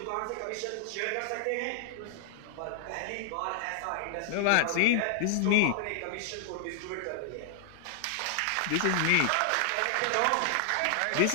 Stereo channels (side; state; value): both; different; correlation 0.00